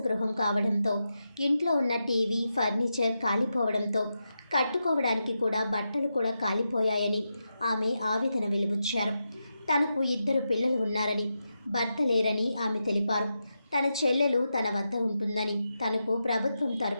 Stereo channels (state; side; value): inverted; both; correlation -0.88